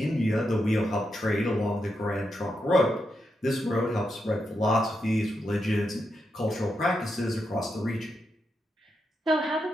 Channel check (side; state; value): both; normal; correlation 0.84